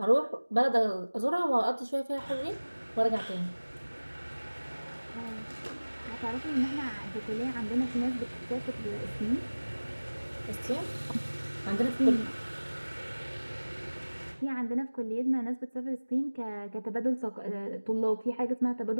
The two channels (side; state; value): both; inverted; correlation -1.00